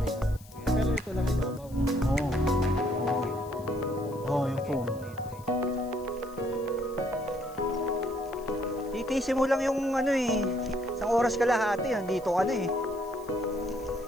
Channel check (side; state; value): left; noise; hiss, 23 dB below the sound